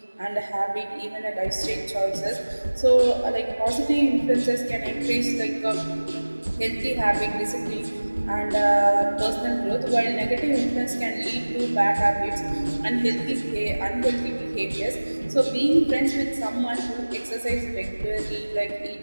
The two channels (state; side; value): inverted; both; correlation -1.00